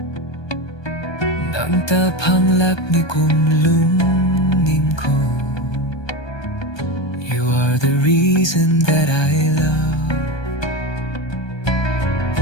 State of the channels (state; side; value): late; right; 1.2 ms